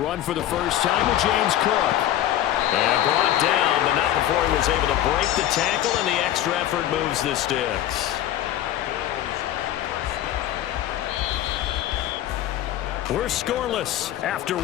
for the first time with James Cook. And brought down, but not before he was able to break the tackle, and the extra effort moves the sticks. We're scoreless after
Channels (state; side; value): quieter; right; 12.5 dB